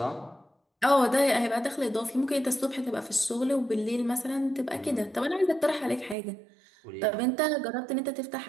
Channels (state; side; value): drops out; left; at 6.2 s